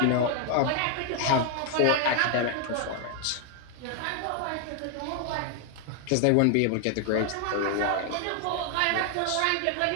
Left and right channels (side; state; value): both; different; correlation 0.00